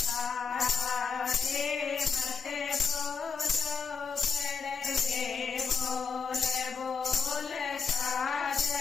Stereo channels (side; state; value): right; quieter; 5.6 dB